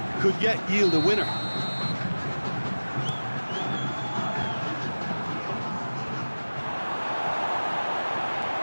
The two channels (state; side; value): inverted; both; correlation -1.00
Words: could yet yield a winner.